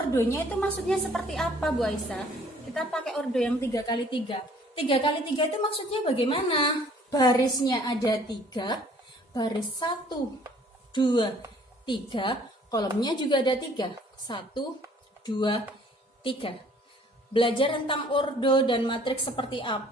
itu maksudnya seperti apa, Bu Aisyah? Kita pakai ordo yang 3x3. 3x3 itu maksudnya bagaimana? Barisnya ada 3, baris 1, 2, 3, kolomnya juga ada 3. 1, 2, 3. Belajar tentang ordo dan matriks seperti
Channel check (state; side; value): normal; both; correlation 0.57